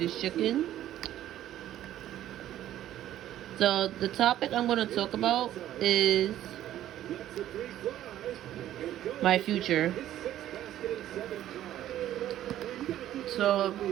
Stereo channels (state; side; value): quieter; left; 12.6 dB